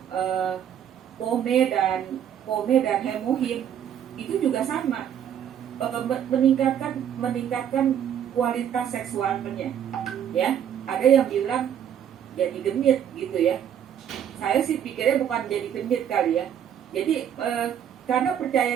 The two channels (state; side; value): quieter; left; 9.4 dB